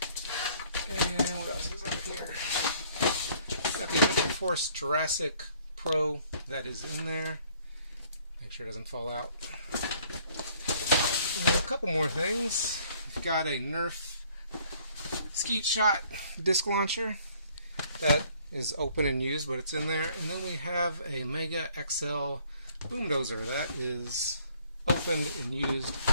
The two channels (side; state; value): both; inverted; correlation -0.60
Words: And what else is up here? Got the Adventure Force Jurassic Pro that is in there. Make sure it doesn't fall out. And a couple more things. We've got a Nerf Skeet Shot disc launcher that is open and used, but it's in there. And then we have a Mega XL boom dozer that is opened and used,